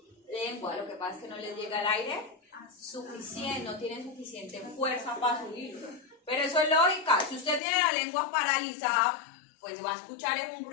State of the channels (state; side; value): drops out; right; at 7.6 s